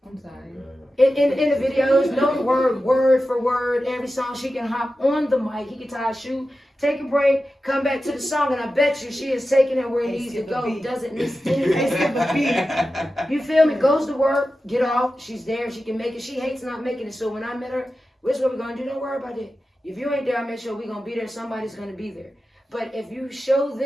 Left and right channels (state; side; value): normal; both; correlation 0.93